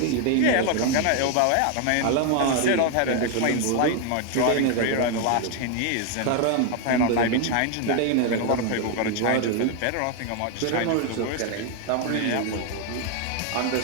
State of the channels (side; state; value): both; different; correlation 0.01